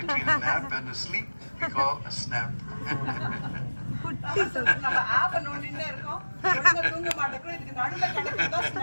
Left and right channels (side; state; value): both; inverted; correlation -1.00